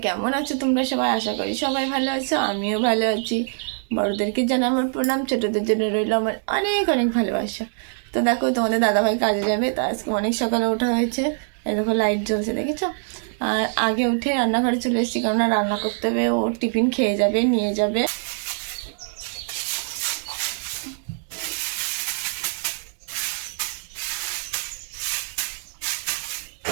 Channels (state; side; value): silent; left; digital silence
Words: কেমন আছো তোমরা সবাই? আশা করি সবাই ভালো আছো, আমিও ভালো আছি। বড়দেরকে জানাই আমার প্রণাম, ছোটদের জন্য রইল আমার অনেক অনেক ভালোবাসা। তো দেখো, তোমাদের দাদাভাই কাজে যাবে, তো আজকে অনেক সকালে ওঠা হয়েছে। এই দেখো লাইট জ্বলছে, দেখেছো? আর আগে উঠে রান্নাঘরে চলে এসেছি, কেননা রান্না করতে হবে, ও টিফিন খেয়ে যাবে, নিয়ে যাবে।